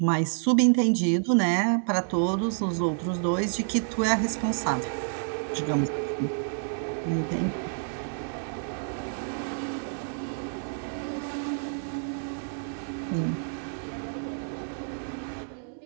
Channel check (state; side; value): silent; left; digital silence